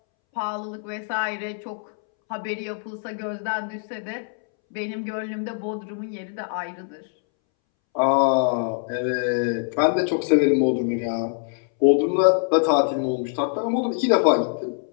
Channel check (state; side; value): silent; right; 63 dB below the other